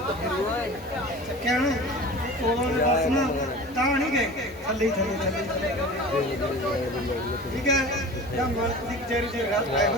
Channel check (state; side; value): normal; both; correlation 0.37